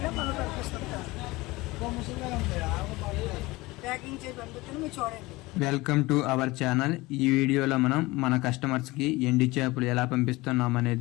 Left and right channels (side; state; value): right; quieter; 21.3 dB